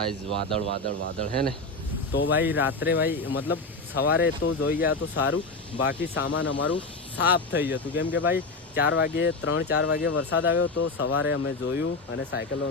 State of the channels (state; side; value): quieter; right; 3.3 dB